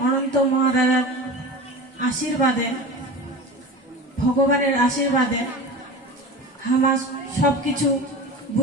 অনন্ত মহারাজার আশীর্বাদে ভগবানের আশীর্বাদে হামা সব কিছু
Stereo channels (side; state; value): both; normal; correlation 0.31